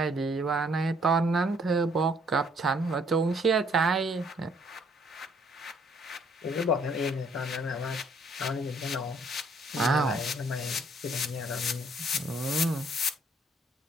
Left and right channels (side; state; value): both; normal; correlation 0.64